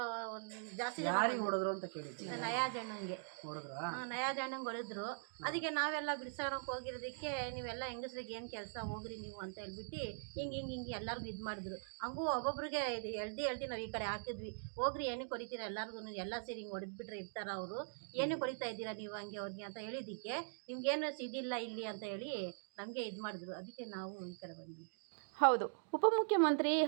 ಒಂದು ಜಾಸ್ತಿ ಯಾರಿಗೆ ಹೊಡೆದ್ರು ಅಂತ ಕೇಳಿದ್ವಿ. ನಯಾಜ್ ಅಣ್ಣಂಗೆ ಹೊಡೆದ್ರಾ? ನಯಾಜ್ ಅಣ್ಣಂಗೆ ಹೊಡೆದ್ರು. ಅದಕ್ಕೆ ನಾವೆಲ್ಲ ಬಿಡ್ಸೋಣಕ್ಕೆ ಹೋಗಿರೋದಕ್ಕೆ ನೀವೆಲ್ಲ ಹೆಂಗಸ್ರಿಗೆ ಏನು ಕೆಲಸ ಹೋಗ್ರಿ ನೀವು ಅಂತ ಹೇಳ್ಬಿಟ್ಟು ಹಿಂಗೆ ಎಲ್ಲರಿಗೂ ಇದು ಮಾಡಿದ್ರು. ಹಂಗೂ ಒಬ್ಬೊಬ್ರಿಗೆ ಇದು ಎಳ್ದು ನಾವು ಈ ಕಡೆ ಹಾಕಿದ್ವಿ. ಹೋಗ್ರಿ ಏನಕ್ಕೆ ಹೊಡಿತೀರ ಎಲ್ಲರಿಗೂ, ಎಲ್ಲ ಸೇರಿ ಹಿಂಗೆ ಹೊಡೆದ್ಬಿಟ್ರೆ ಇರ್ತಾರ ಅವರು, ಏನಕ್ಕೆ ಹೊಡಿತಾ ಇದ್ದೀರಾ ನೀವು ಹಂಗೆ ಅವ್ರಿಗೆ ಅಂತ ಹೇಳಿದ್ದಕ್ಕೆ ನಿಮ್ಗೇನು ಇದಿಲ್ಲ ಇಲ್ಲಿ ಅಂತ ಹೇಳಿ ನಮಗೆ ಇದು ಮಾಡಿದ್ರು. ಅದಕ್ಕೆ ನಾವು ಈ ಕಡೆ ಬಂದ್ವಿ. ಹೌದು, ಉಪಮುಖ್ಯಮಂತ್ರಿ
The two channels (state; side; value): silent; left; digital silence